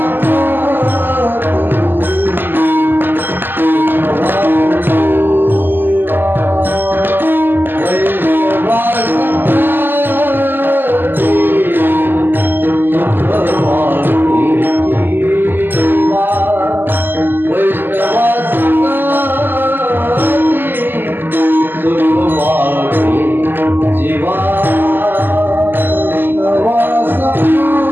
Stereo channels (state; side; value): late; left; 0.094 ms